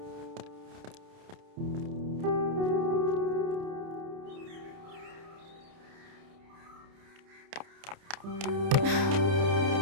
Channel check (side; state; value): left; late; 30 ms